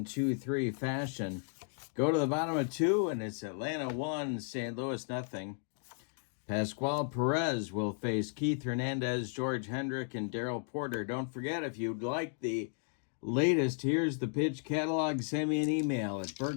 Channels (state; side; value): silent; right; 55 dB below the other